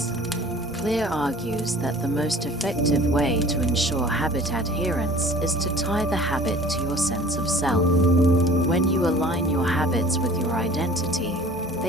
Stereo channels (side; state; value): both; normal; correlation 0.48